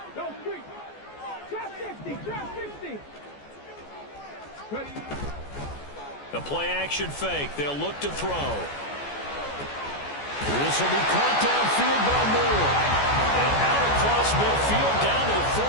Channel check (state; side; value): late; right; 14 ms